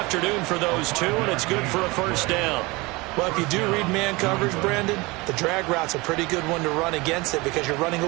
for those two, and it's good for a first down. Well, if you do read man coverage, Brandon, the drag route's a pretty good one to run against it because you're running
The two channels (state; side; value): quieter; left; 23.8 dB